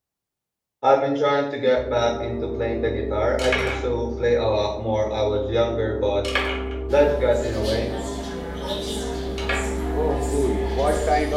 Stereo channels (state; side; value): identical; both; correlation 1.00